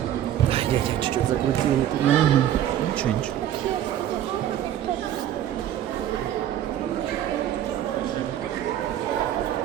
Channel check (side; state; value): left; quieter; 11.4 dB